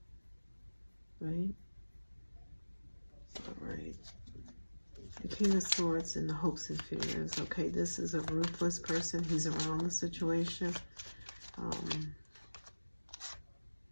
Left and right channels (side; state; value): both; inverted; correlation -1.00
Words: Right? All right. The King of Swords and the hopes and fears. Okay, this is a ruthless person. He's around the situation.